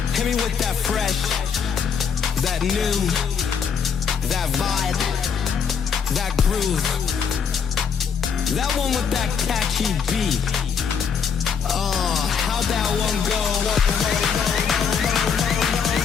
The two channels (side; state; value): right; quieter; 6.6 dB